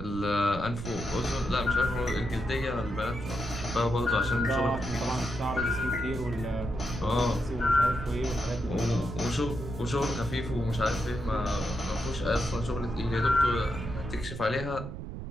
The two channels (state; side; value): noise; right; rumble, 8 dB below the sound